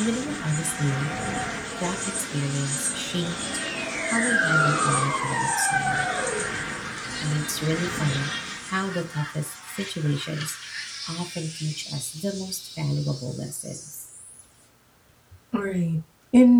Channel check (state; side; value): identical; both; correlation 1.00